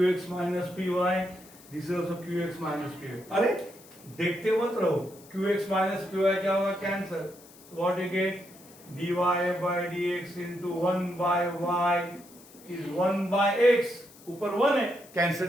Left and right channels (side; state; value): left; noise; hiss, 23 dB below the sound